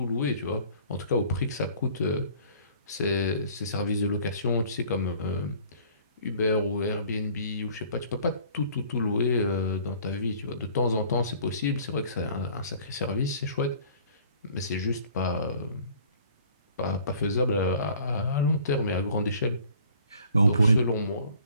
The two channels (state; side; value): inverted; both; correlation -0.53